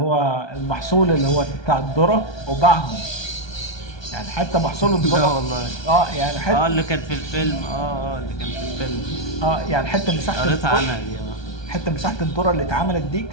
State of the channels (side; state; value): right; late; 1.2 ms